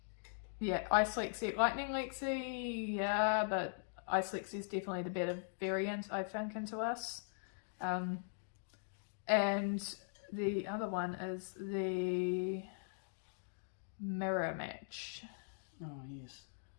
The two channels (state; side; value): silent; right; digital silence